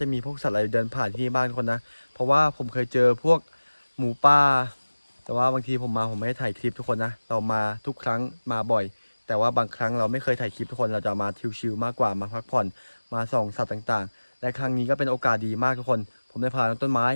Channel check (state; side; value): inverted; both; correlation -1.00